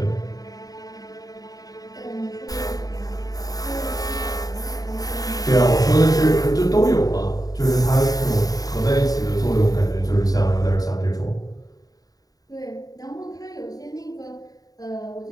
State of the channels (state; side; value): late; right; 0.18 ms